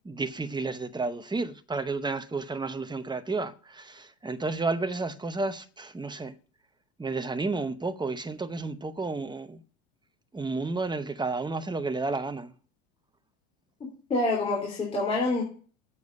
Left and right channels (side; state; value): both; normal; correlation 0.56